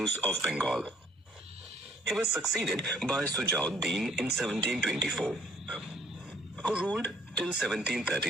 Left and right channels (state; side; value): normal; both; correlation 0.61